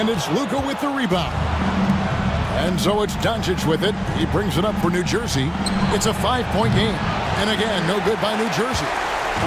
it's Luka with the rebound. And so it's Doncic with it. He brings it up for New Jersey. It's a 5-point game. And again, no good by New Jersey.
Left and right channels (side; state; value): both; identical; correlation 1.00